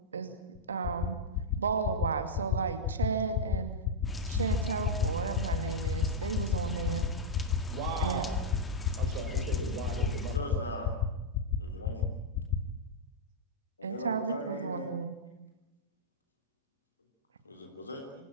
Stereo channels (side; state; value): both; normal; correlation -0.06